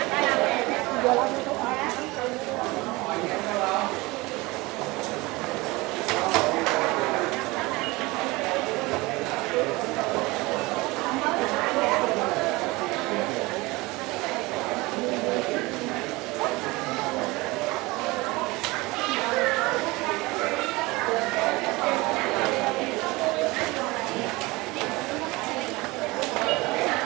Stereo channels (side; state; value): left; quieter; 22.5 dB